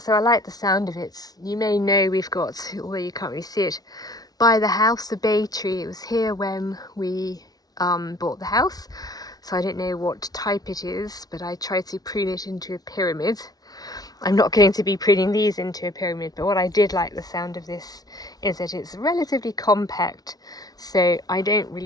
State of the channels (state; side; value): late; right; 0.19 ms